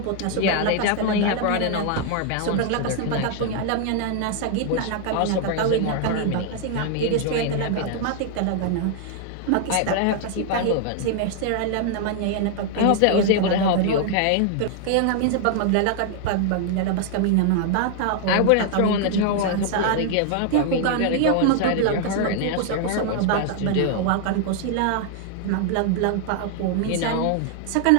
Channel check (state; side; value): different; both; correlation 0.00